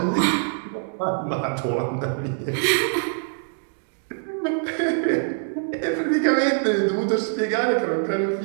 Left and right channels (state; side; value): silent; left; digital silence